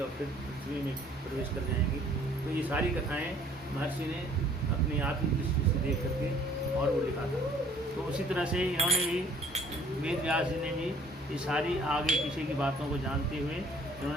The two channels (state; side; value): normal; both; correlation 0.57